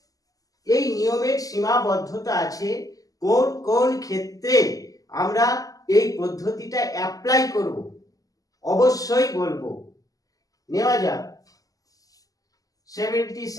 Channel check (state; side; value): late; right; 0.17 ms